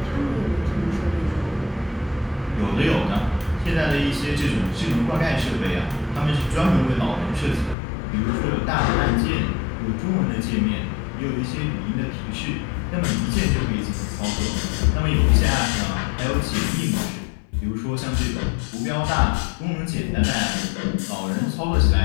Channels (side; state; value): right; drops out; at 7.8 s